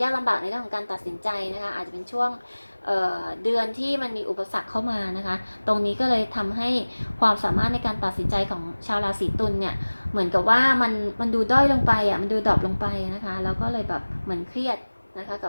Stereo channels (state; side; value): inverted; both; correlation -1.00